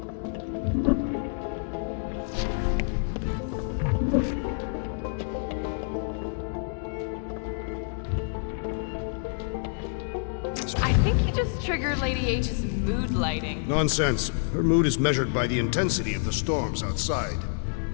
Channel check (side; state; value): right; silent; digital silence